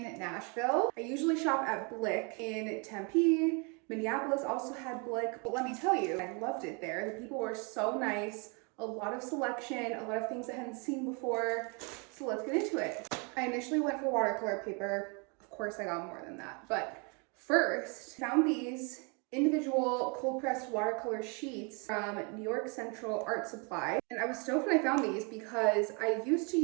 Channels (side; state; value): left; quieter; 33.7 dB